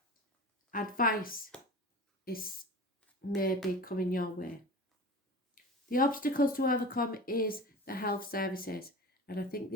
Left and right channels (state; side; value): normal; both; correlation 0.34